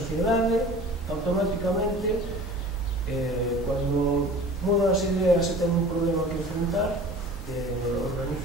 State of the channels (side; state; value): both; normal; correlation 0.42